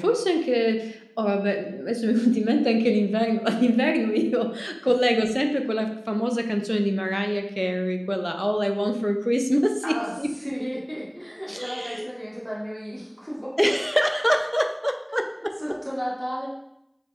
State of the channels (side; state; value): both; identical; correlation 1.00